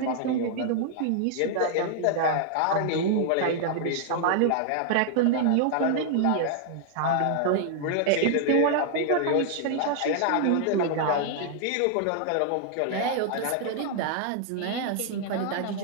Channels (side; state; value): both; different; correlation -0.01